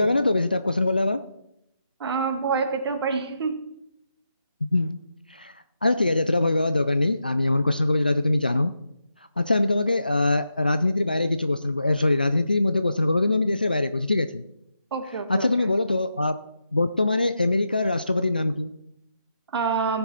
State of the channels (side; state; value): both; inverted; correlation -0.85